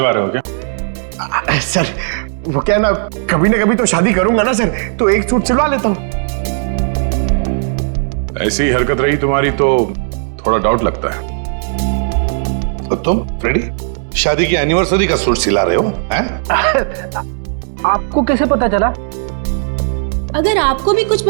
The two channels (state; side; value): silent; left; 70 dB below the other